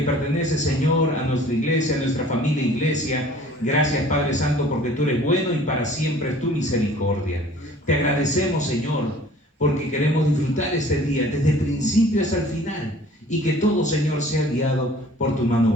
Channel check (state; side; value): normal; both; correlation 0.50